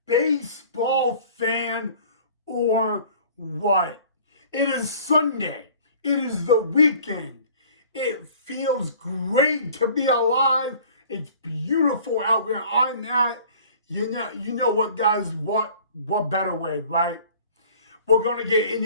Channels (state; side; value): inverted; both; correlation -0.49